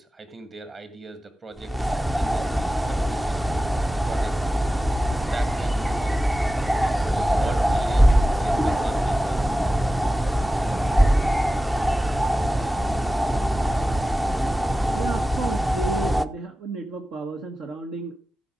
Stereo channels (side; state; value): both; normal; correlation 0.95